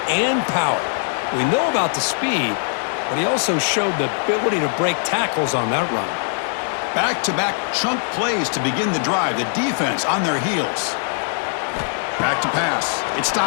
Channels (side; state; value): right; silent; digital silence